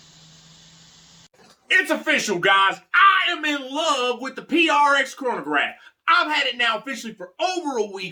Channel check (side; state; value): both; identical; correlation 1.00